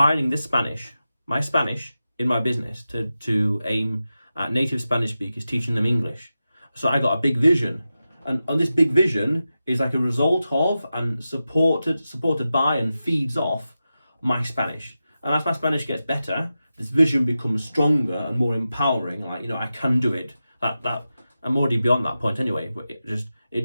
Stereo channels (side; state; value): both; inverted; correlation -0.92